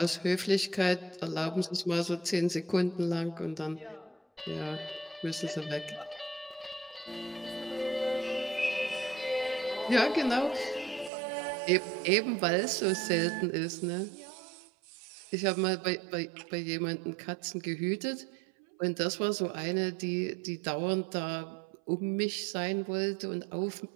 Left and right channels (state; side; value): drops out; left; at 11.1 s